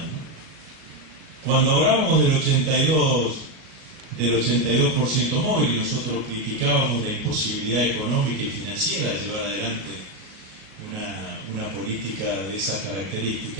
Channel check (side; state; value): left; late; 38 ms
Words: ¿no? Cuando hablábamos del 82% móvil, y nosotros criticábamos la imposibilidad económica y financiera de llevar adelante una política de esas